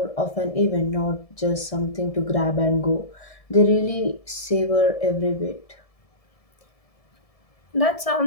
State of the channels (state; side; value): late; right; 1.7 ms